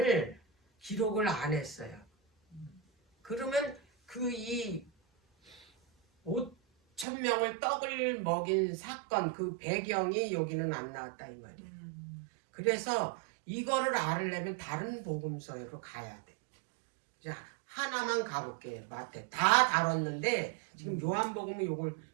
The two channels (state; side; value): drops out; left; at 7.1 s